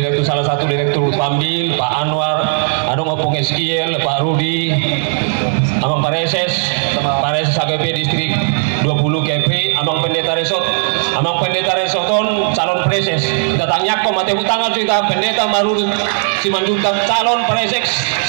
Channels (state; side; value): silent; left; digital silence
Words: salah satu direktur Pambil Pak Anwar adong opung SKL Pak Rudi Amang Pareses AGP distrik 20 KP Amang Pendeta Resoton calon preses kita tanya kok mati utang juga pendeta baru Simanjuntak calon preses